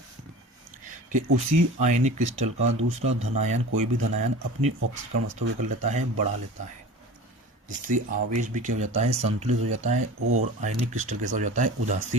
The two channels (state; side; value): normal; both; correlation 0.36